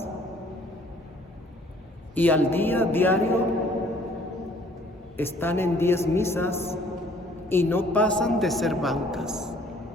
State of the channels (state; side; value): normal; both; correlation 0.58